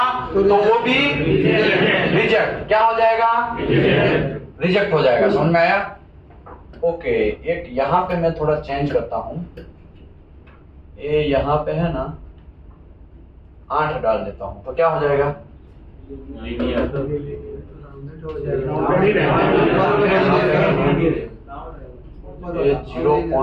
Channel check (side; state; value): both; identical; correlation 1.00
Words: तो वो भी रिजेक्ट। क्या हो जाएगा? रिजेक्ट हो जाएगा। समझ में आया? ओके, एक यहां पे मैं थोड़ा चेंज करता हूं। ये यहां पे है ना 8 डाल देता हूं तो क्या हो जाएगा? ये